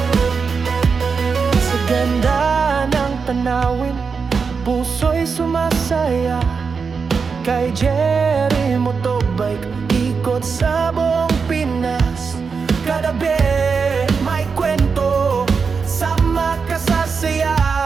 Sa ganda ng tanawin, puso'y sumasaya. Kay Jerry Motobike, ikot sa buong Pinas. Kagabi may kwento, sama ka sa saya.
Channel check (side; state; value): left; quieter; 5.4 dB